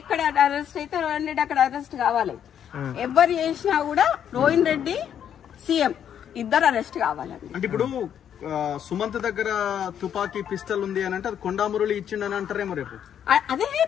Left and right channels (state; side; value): quieter; right; 9.2 dB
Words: అరెస్ట్ అయితే రోహిన్ రెడ్డి అక్కడ అరెస్ట్ కావాలి. ఎవరు చేసినా కూడా రోహిన్ రెడ్డి సీఎం ఇద్దరు అరెస్ట్ కావాలండి. అంటే ఇప్పుడు సుమంత్ దగ్గర తుపాకీ పిస్టల్ ఉంది అని అంటే అది కొండా మురళి ఇచ్చిండని అంటారేమో రేపు.